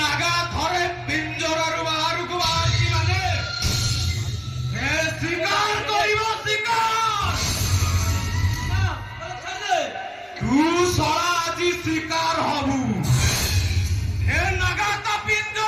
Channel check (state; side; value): identical; both; correlation 1.00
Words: নাগা ধরে পিঞ্জরার বাহারକୁ বাহারছি মানে সে শিকার করিব শিকার তু সরা আজি শিকার হবু হে নাগা তা